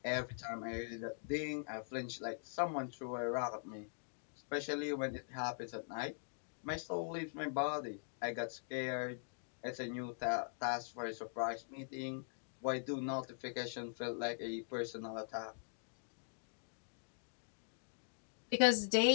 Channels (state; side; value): silent; right; digital silence